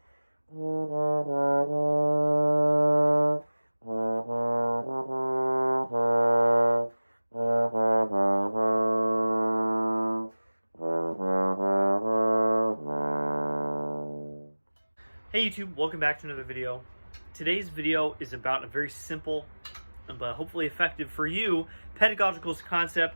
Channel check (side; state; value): both; inverted; correlation -1.00